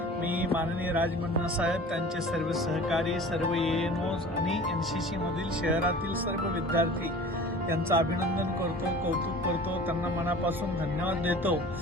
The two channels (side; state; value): both; normal; correlation 0.42